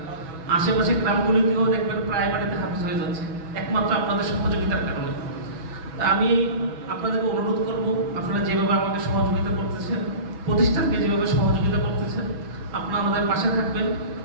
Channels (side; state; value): left; late; 6.1 ms